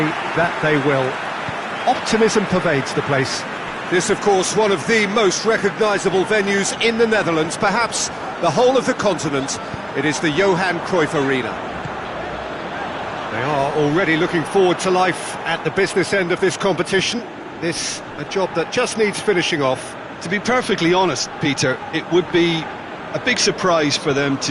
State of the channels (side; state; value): both; identical; correlation 1.00